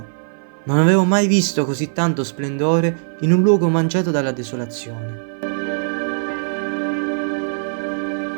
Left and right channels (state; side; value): silent; left; 57 dB below the other